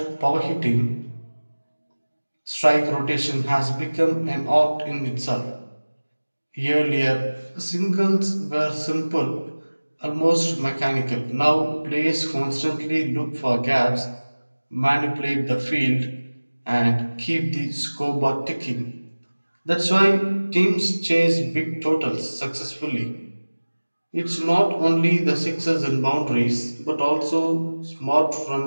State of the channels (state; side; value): inverted; both; correlation -1.00